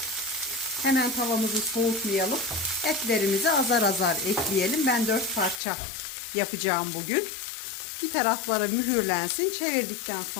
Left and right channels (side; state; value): right; drops out; at 5.6 s